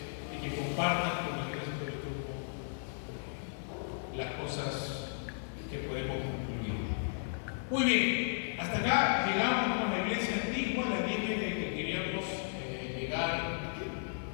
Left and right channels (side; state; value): right; silent; 55 dB below the other